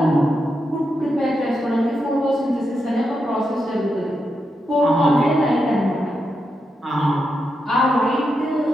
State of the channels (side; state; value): both; normal; correlation 0.85